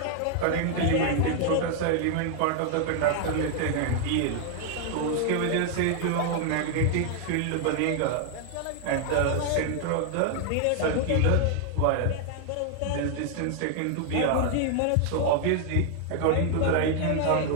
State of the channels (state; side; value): different; both; correlation 0.00